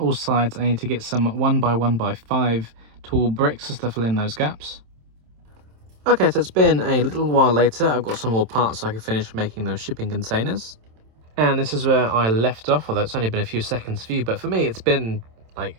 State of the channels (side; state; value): left; late; 27 ms